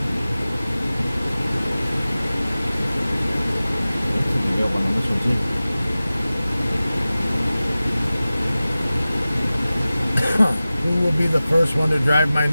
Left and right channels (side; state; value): both; inverted; correlation -0.96